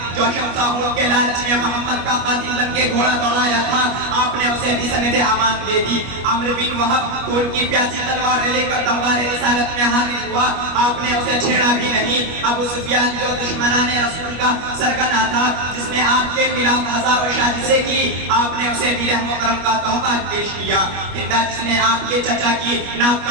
جو شمساہوں کے لالچ میں محمد کا قاتل بن کے گھوڑا دوڑایا تھا، آپ نے اسے بھی سند امان دے دی. عمرو بن وہب خون کی پیاسی تلوار لے کر دربار رسالت میں حاضر ہوا، آپ نے اسے چھیڑا بھی نہیں. ابو سفیان جو دشمنان رسول کا سرگنا تھا جس نے آپ کے خلاف ہزاروں سازشیں کی، آپ نے اسے بھی رحم و کرم کا تحفہ پیش کیا. ہندا جس نے آپ کے چچا کی ناک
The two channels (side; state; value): left; late; 25 ms